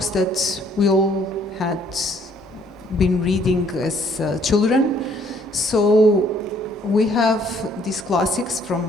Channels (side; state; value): both; normal; correlation 0.63